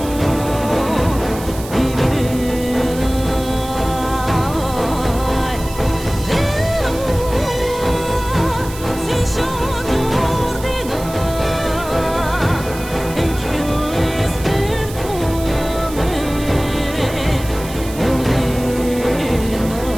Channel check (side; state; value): right; noise; hiss, 15 dB below the sound